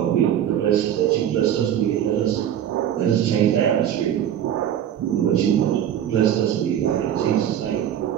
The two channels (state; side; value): quieter; left; 10.2 dB